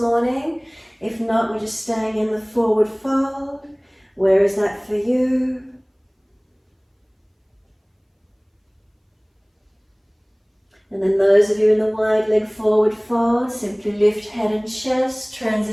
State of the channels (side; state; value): both; identical; correlation 1.00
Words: If not, we're just staying in the forward fold. Where is that for you? And then those of you in the wide leg forward fold, simply lift head and chest,